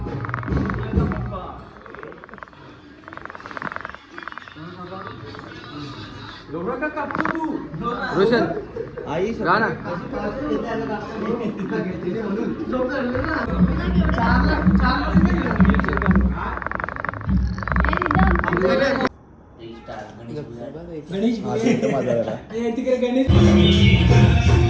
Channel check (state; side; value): identical; both; correlation 1.00